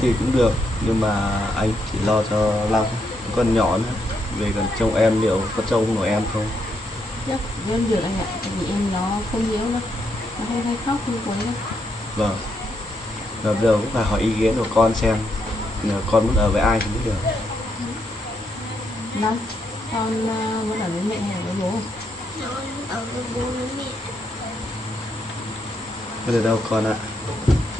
thì cũng được, nhưng mà anh chỉ lo cho Long, con nhỏ nữa, về còn trông em liệu có trông nổi em không? Chắc em được anh ạ, tại vì em nó không yếu đâu, nó không hay khóc không quấy đâu. Vâng, và bây giờ cũng phải hỏi ý kiến của con xem là con muốn ở với ai thì mới được. Năm, con muốn ở với mẹ hay ở với bố? Ở với bố với mẹ. Bây giờ đâu con ạ,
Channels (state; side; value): normal; both; correlation 0.77